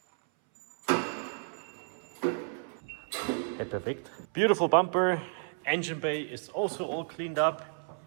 Okay, perfect. Beautiful bumper. Engine bay is also all cleaned up.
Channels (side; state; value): left; silent; 57 dB below the other